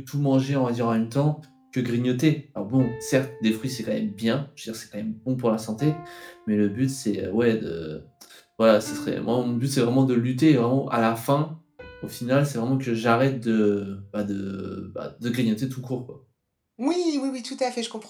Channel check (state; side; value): identical; both; correlation 1.00